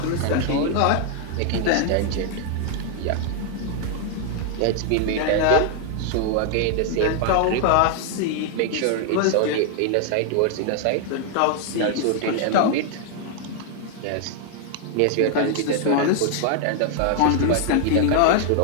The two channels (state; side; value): different; both; correlation 0.00